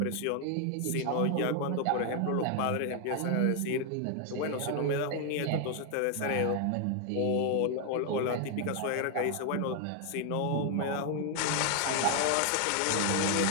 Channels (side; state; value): both; different; correlation 0.00